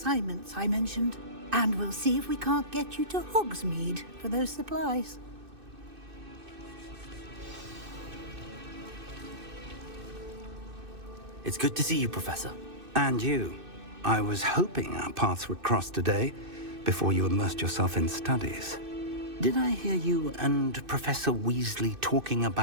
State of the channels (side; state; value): left; late; 2.6 ms